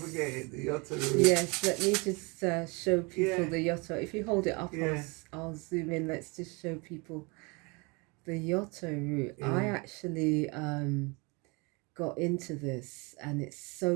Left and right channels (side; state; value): left; quieter; 28.9 dB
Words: forget it, the Yotta root. Yes, let me just show people the Yotta. If you hold it up, Yeah. I'll zoom in. Let's just show people the Yotta root. Yeah. I actually got into this, and it's